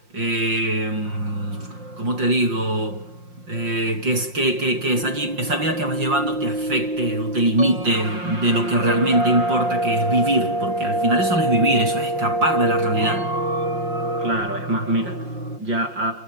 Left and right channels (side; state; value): left; late; 5.6 ms